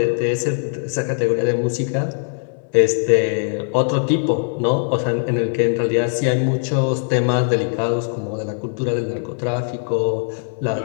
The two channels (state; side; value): silent; right; 64 dB below the other